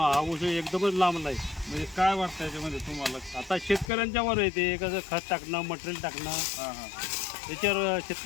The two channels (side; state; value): right; drops out; at 3.9 s